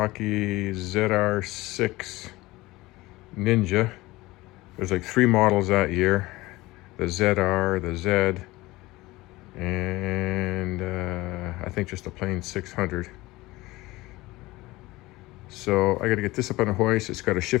ZR6 Ninja. There's like 3 models that year. The ZR, the Z, and I think just a plain 600. So I got to get this up on a hoist. It's got a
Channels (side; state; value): right; quieter; 19.7 dB